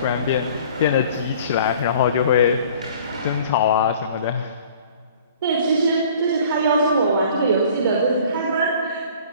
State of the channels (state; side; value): inverted; both; correlation -0.50